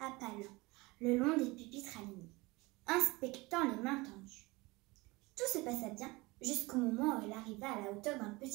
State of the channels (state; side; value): quieter; left; 23.1 dB